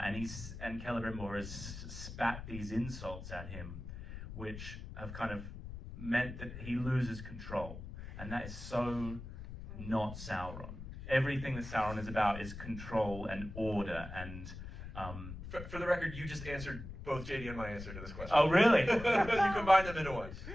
and Celebrimbor has spat these insults at him, which have kind of meant that he loses control, and that is so not Sauron. Everything that Sauron is about is control and order, and For the record, you just answered both JD and my answer to this question. Oh, really? You combined them into one.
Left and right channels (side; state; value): left; noise; rumble, 10 dB below the sound